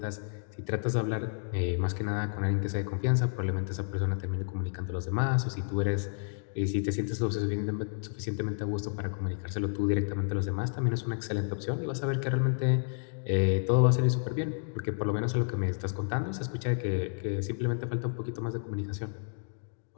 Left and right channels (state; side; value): silent; right; digital silence